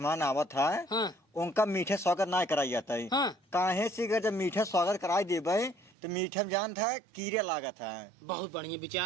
आवत है हाँ उनका मीठे स्वागत ना कराई जाता है। हाँ काहे से अगर जब मीठे स्वागत कराई देबे तो मीठे में जान था कीड़े लागत है। बहुत बढ़िया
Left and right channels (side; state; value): left; drops out; at 6.0 s